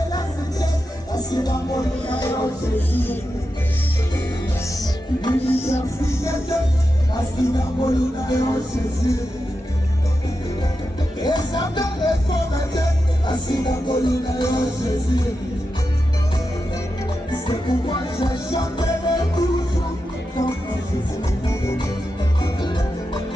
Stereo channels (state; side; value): normal; both; correlation 0.89